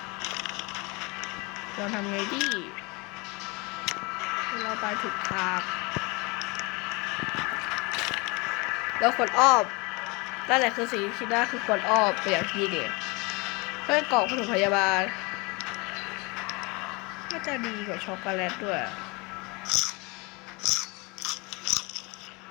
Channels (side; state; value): right; quieter; 27.5 dB